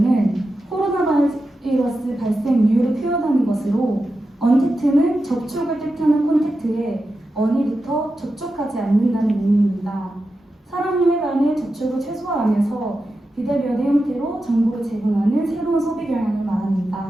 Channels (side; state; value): both; normal; correlation 0.90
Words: 코로나 바이러스 발생 이유를 표현하는 것으로 언택트는 접촉을 뜻하는 콘택트에 언이부터 접촉하지 않는다는 의미입니다. 사람의 간의 접촉을 최소화하면서 비대면의 형태로 정보를 제공하는 새로운 소비 경향을